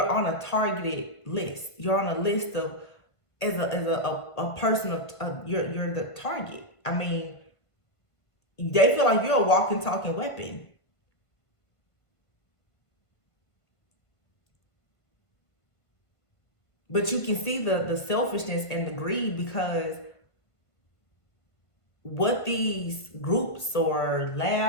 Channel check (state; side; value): late; right; 1.5 ms